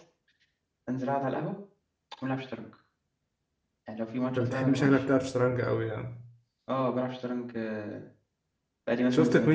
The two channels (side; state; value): both; identical; correlation 1.00